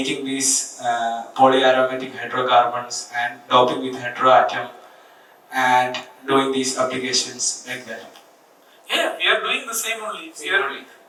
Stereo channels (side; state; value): both; identical; correlation 1.00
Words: these polyaromatic hydrocarbons and doping with heteroatom and doing these applications like that? Yeah, we are doing the same only. We